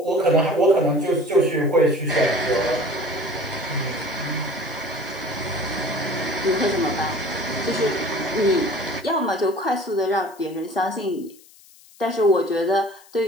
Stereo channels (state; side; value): noise; left; hiss, 25 dB below the sound